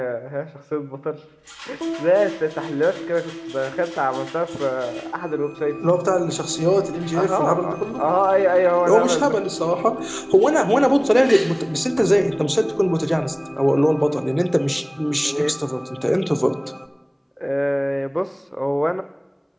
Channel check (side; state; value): both; identical; correlation 1.00